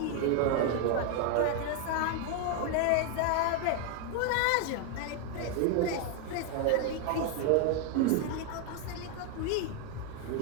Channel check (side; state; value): both; different; correlation 0.00